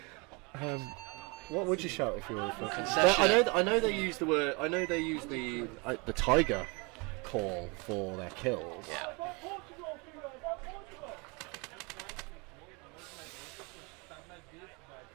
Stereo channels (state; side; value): quieter; left; 29.5 dB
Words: what would you shout if you were? Concession. I know they use the word. I know they use the tiger call for their kills. Yeah.